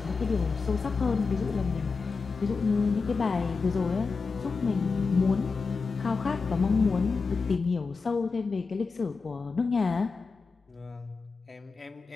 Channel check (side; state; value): right; quieter; 4.6 dB